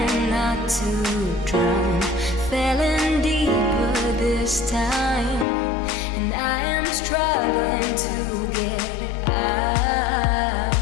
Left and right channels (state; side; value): drops out; right; at 5.5 s